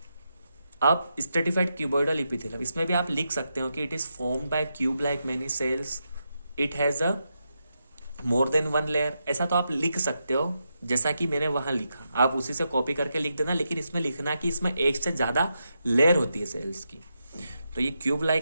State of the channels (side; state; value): both; inverted; correlation -0.85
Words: अब स्ट्रेटिफाइड क्यूबॉइडल इपिथेलियम, इसमें भी आप लिख सकते हो कि it is formed by cube like many cells, it has a more than one layer, ऐसा तो आप लिख सकते हो जैसा कि मैंने वहां लिखा, आप उसी से कॉपी करके लिख देना, लेकिन इसमें लिखना कि इसमें एक से ज्यादा लेयर होती है सेल्स की। तो ये क्यूब